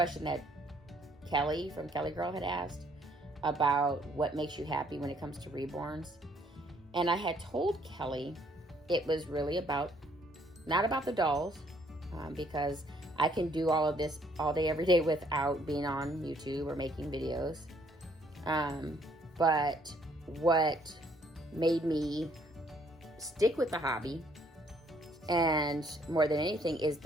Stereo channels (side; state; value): both; normal; correlation 0.65